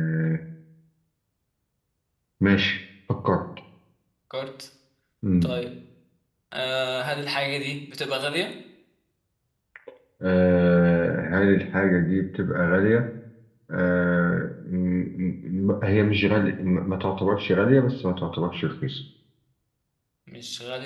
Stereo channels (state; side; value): identical; both; correlation 1.00